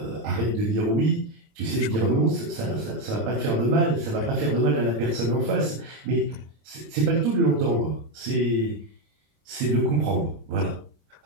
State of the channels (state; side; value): late; left; 26 ms